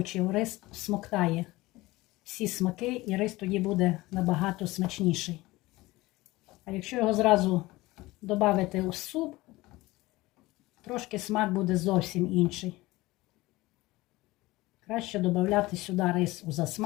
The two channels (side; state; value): right; quieter; 19.7 dB